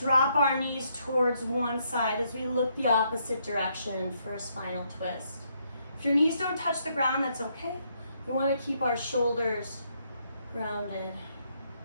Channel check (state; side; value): inverted; both; correlation -0.74